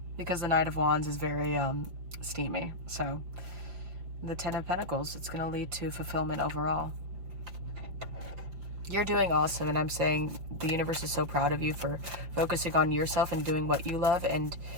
because the Knight of Wands is very steamy. So the 10 of Pentacles, it's going to lead to fulfillment overall. You're doing awesome, and I'm saying the universe is so proud of you for focusing on yourself and doing what you love, and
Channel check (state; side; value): late; left; 5.5 ms